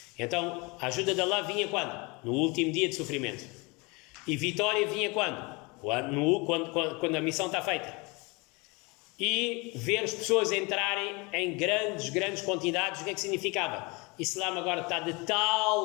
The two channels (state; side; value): quieter; right; 27.4 dB